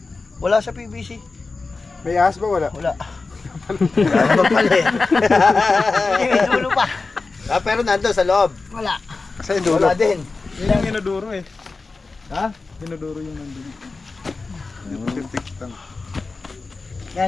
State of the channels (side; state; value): right; quieter; 3.9 dB